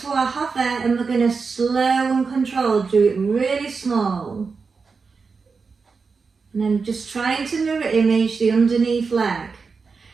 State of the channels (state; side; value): quieter; left; 4.9 dB